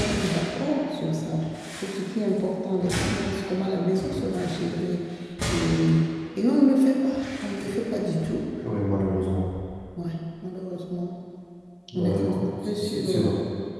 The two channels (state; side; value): identical; both; correlation 1.00